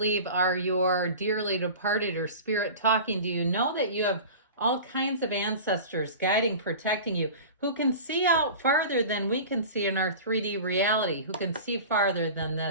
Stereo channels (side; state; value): both; inverted; correlation -0.36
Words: are your dearly departed or spirit talking to you, know that you have all kinds of ancestors guiding, protecting you, who can see out farther than we can see in our 3D reality, who can see farther than